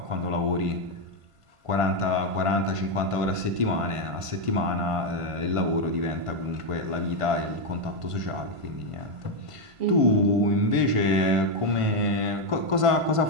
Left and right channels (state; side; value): late; left; 1.5 ms